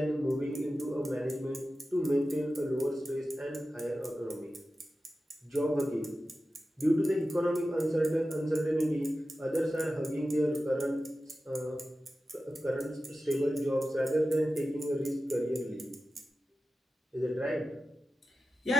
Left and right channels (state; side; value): normal; both; correlation 0.93